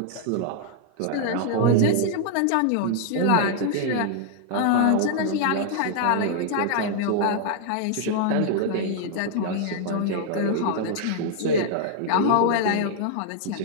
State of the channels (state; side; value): different; both; correlation 0.00